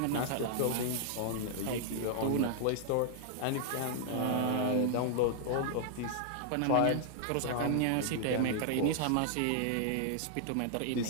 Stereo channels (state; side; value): different; both; correlation -0.01